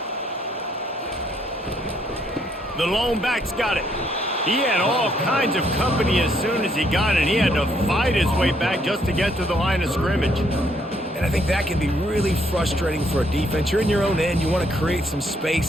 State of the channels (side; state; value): both; normal; correlation 0.70